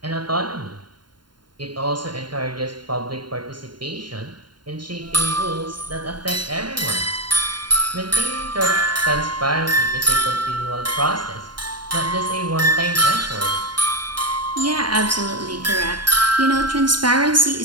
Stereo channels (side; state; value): left; late; 0.71 ms